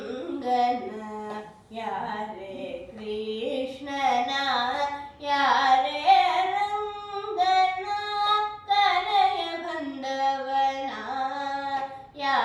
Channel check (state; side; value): identical; both; correlation 1.00